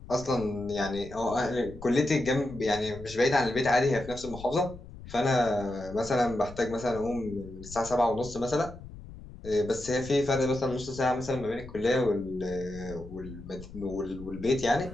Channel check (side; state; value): left; noise; rumble, 15 dB below the sound